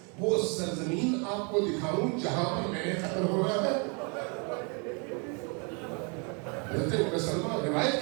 وہ سرزمین آپ کو دکھاؤں جہاں پر میں نے قتل ہو رہا ہے؟ حضرت ام سلمہ روایت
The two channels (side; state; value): left; quieter; 34.8 dB